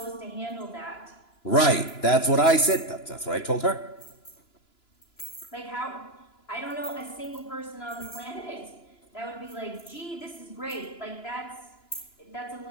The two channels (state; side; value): late; right; 2.9 ms